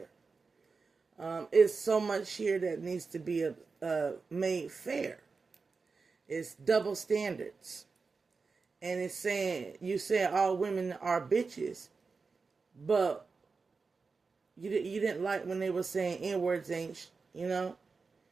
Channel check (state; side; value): quieter; left; 4.6 dB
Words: It's so much here that needs to be made fair. It's double standards. And it's saying, you say all women are bitches, but you didn't like when they were saying N-words ain't, they didn't